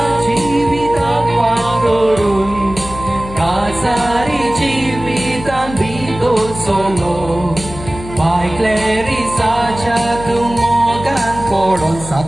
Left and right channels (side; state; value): left; noise; hum, 12 dB below the sound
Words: chivitan parorun Kasari chivitan bito solo By Clarissa chatumogan poron